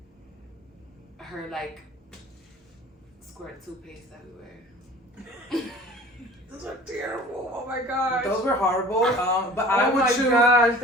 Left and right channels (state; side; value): normal; both; correlation 0.45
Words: her like squirt toothpaste everywhere? Those are terrible. Oh my gosh. Those were horrible. But I Oh would my choose. gosh,